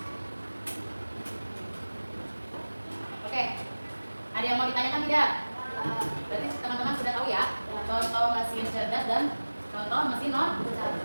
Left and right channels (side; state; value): both; inverted; correlation -1.00